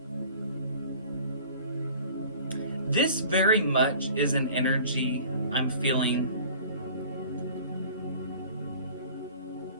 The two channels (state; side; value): inverted; both; correlation -0.45